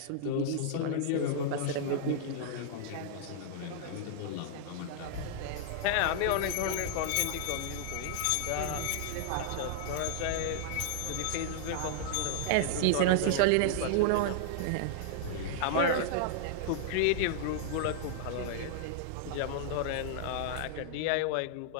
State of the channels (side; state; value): both; different; correlation -0.01